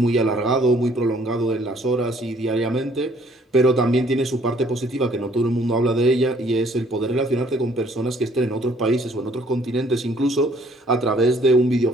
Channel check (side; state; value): both; normal; correlation 0.61